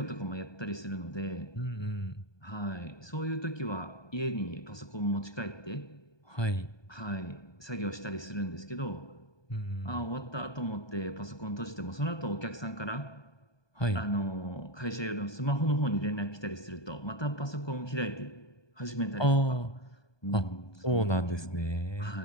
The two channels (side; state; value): right; late; 1.2 ms